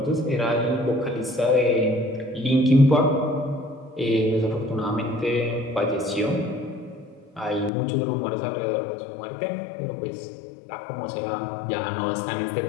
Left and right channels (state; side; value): drops out; right; at 7.7 s